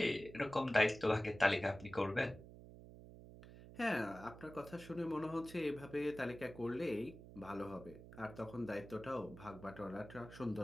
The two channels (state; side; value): noise; right; hum, 16 dB below the sound